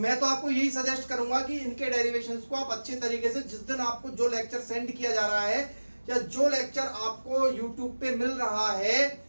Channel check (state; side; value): inverted; both; correlation -1.00